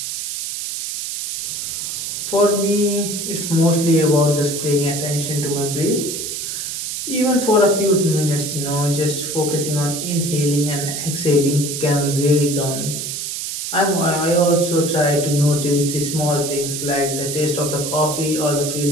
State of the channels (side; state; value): right; noise; hiss, 5 dB below the sound